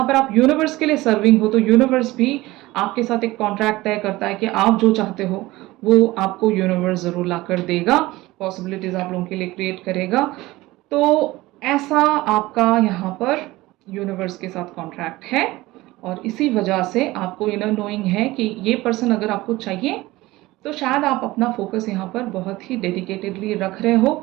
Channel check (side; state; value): left; quieter; 19.0 dB